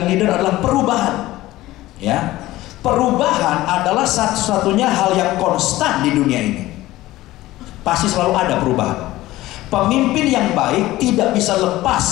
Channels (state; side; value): quieter; right; 16.8 dB